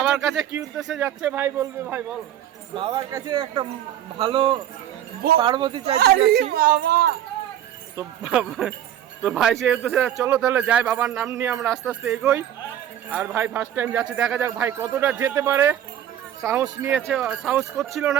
কাছে কি উদ্দেশ্যে যাচ্ছে ভাই বলবে, ভাই বল। বাবার কাছে একটা ভালো পার্বতী চাইতে যাচ্ছি। তো ভাই সেই উদ্দেশ্যে চলো তাহলে যাই, বাবার নাম নিয়ে আমরা আস্তে আস্তে এগোই। আর ভাই ফার্স্ট টাইম যাচ্ছে, দেখা যাক ভাই কতটা যেতে পারে। সাহস নিয়েছে, সাহস করছিল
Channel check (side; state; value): left; quieter; 11.0 dB